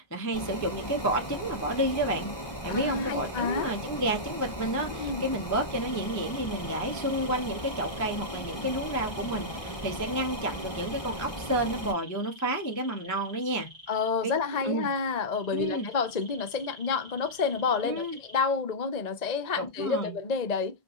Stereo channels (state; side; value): late; right; 1.2 ms